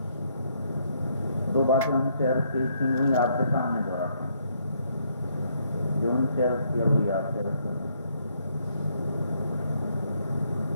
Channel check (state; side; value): inverted; both; correlation -0.71